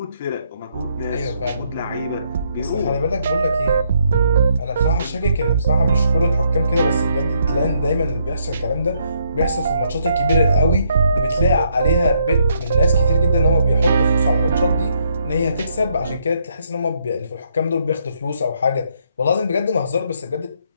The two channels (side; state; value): both; inverted; correlation -0.73